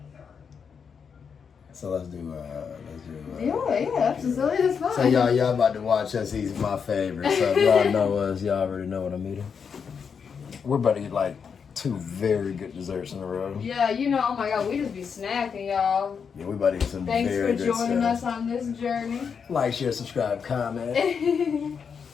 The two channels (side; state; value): right; quieter; 6.4 dB